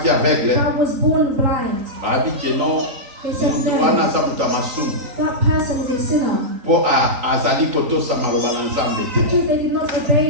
aveugle. that was born blind. Babi ke non. They said no, Wana za mutu amasumu. that person is a sinner Po azali kotosa maloba na Nzambe te. because they did not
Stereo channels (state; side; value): late; left; 3.9 ms